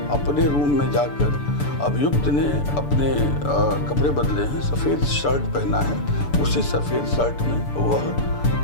अपने रूम में जाकर अभियुक्त ने अपने कपड़े बदले हैं, सफ़ेद शर्ट पहना है, उसी सफ़ेद शर्ट में वह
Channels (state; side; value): late; right; 6.9 ms